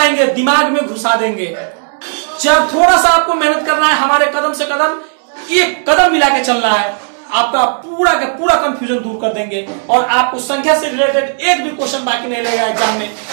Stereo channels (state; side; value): silent; left; 71 dB below the other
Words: दिमाग में घुसा देंगे। जब थोड़ा सा आपको मेहनत करना है, हमारे कदम से कदम एक कदम मिला के चलना है, आपका पूरा का पूरा कंफ्यूजन दूर कर देंगे और आपको संख्या से रिलेटेड एक भी क्वेश्चन बाकी नहीं रहेगा एग्जाम में।